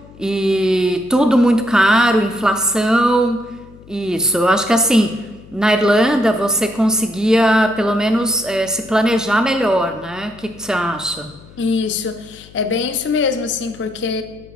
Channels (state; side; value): noise; left; hum, 23 dB below the sound